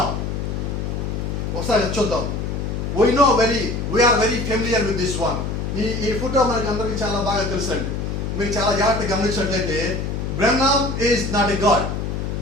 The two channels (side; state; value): left; noise; hum, 3 dB below the sound